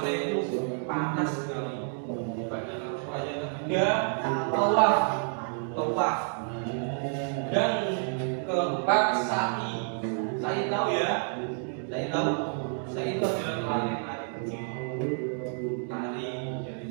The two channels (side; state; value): left; silent; 58 dB below the other